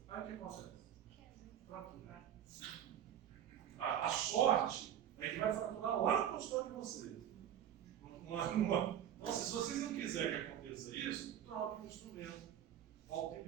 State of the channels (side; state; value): left; quieter; 10.1 dB